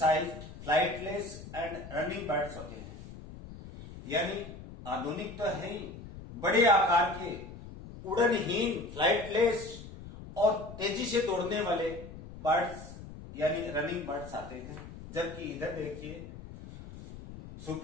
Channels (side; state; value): left; noise; rumble, 14 dB below the sound